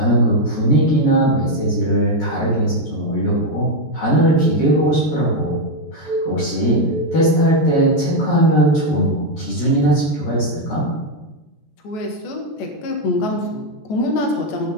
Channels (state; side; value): late; right; 13 ms